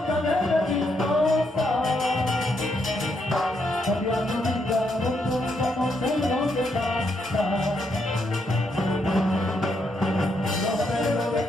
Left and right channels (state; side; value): normal; both; correlation 0.78